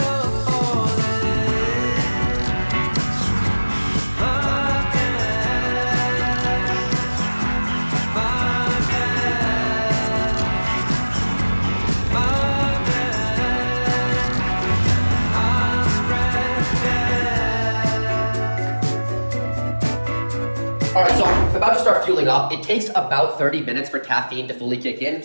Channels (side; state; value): both; inverted; correlation -1.00